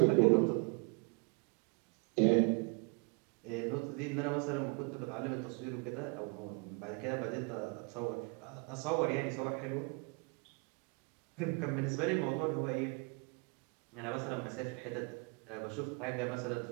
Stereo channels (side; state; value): left; quieter; 32.5 dB